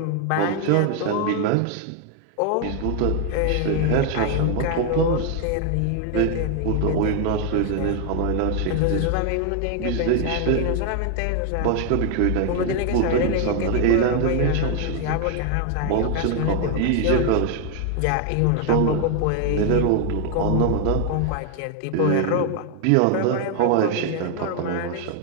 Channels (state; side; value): different; both; correlation 0.00